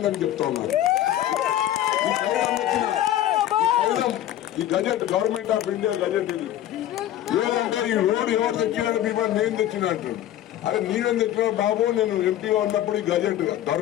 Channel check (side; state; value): right; quieter; 12.6 dB